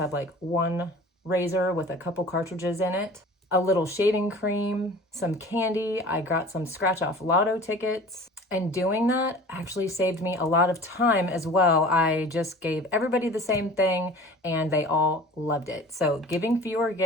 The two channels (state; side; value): normal; both; correlation 0.42